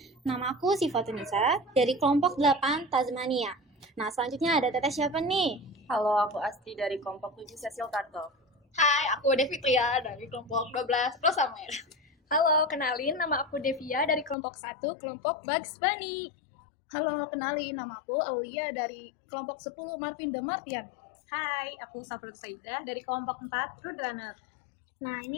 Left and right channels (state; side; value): drops out; right; at 14.4 s